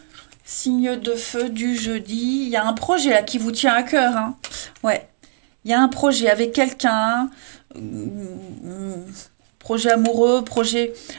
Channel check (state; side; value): silent; left; digital silence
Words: Signe de feu du jeudi. Il y a un projet là qui vous tient à cœur, hein. Ouais. Il y a un projet avec quelqu'un. Projet amoureux, projet...